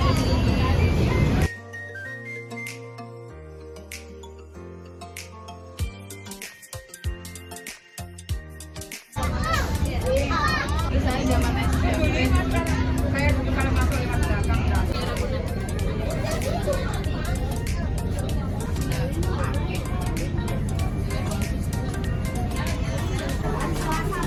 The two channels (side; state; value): both; identical; correlation 1.00